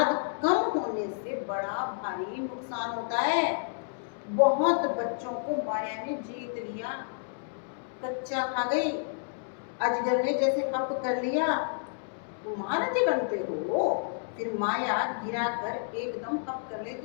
कम होने से बड़ा भारी नुकसान होता है। बहुत बच्चों को माया ने जीत लिया, कच्चा खा गई, अजगर ने जैसे हप कर लिया। तुम महारथी बनते हो, फिर माया गिरा कर एकदम हप कर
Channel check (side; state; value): right; silent; digital silence